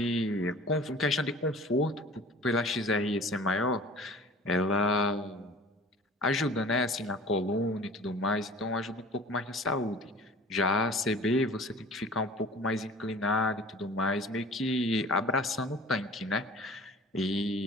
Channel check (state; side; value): normal; both; correlation 0.44